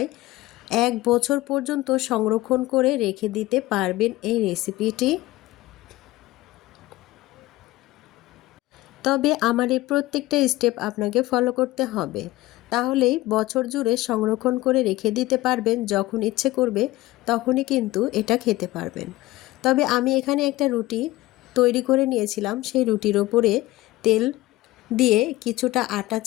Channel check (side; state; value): right; quieter; 17.9 dB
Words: 1 বছর পর্যন্ত সংরক্ষণ করে রেখে দিতে পারবেন এই রেসিপিটি। তবে আমার এই প্রত্যেকটা স্টেপ আপনাকে ফলো করতে হবে, তাহলেই বছর জুড়ে সংরক্ষণ করে রেখে দিতে পারবেন। যখন ইচ্ছে করবে তখনই কিন্তু এটা খেতে পারবেন। তবে আমি এখানে একটা রুটি তৈরি করে নিয়েছিলাম। সেই রুটির ওপরে তেল দিয়ে কিছুটা আটা